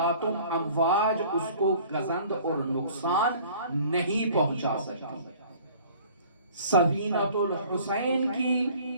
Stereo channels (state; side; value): inverted; both; correlation -0.50